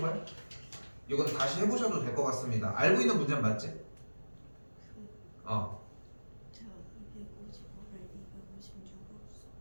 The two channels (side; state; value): both; inverted; correlation -1.00